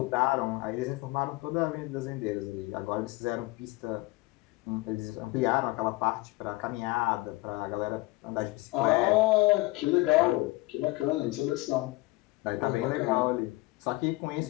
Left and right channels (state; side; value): quieter; right; 21.3 dB